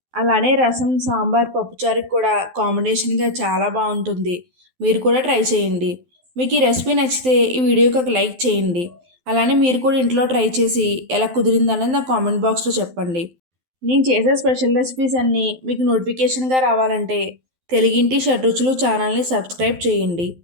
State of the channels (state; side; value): late; left; 12 ms